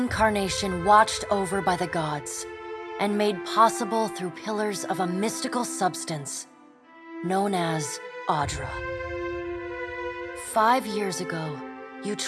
watched over by the gods, and made possible through pillars of a mystical substance known as Audra. 5 years ago, you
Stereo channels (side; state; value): both; identical; correlation 1.00